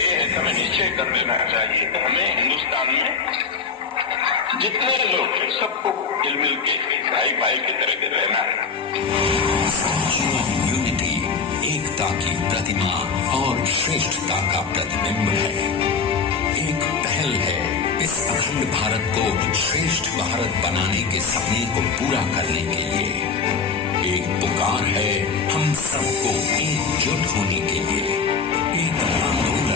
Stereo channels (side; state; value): right; quieter; 5.3 dB